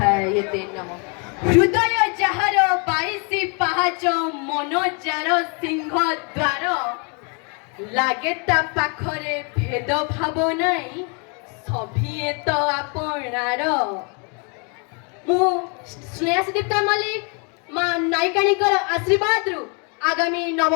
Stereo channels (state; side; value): quieter; right; 35.5 dB